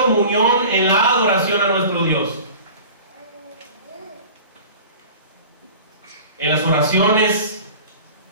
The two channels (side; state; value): both; inverted; correlation -0.40